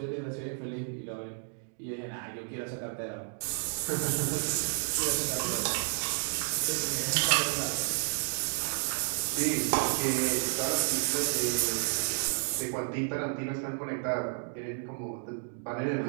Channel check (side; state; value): left; silent; 57 dB below the other